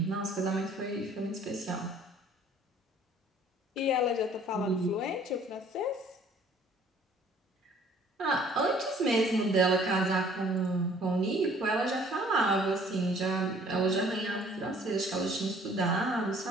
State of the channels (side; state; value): both; normal; correlation 0.56